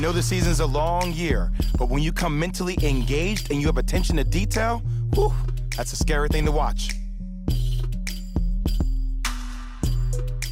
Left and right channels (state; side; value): identical; both; correlation 1.00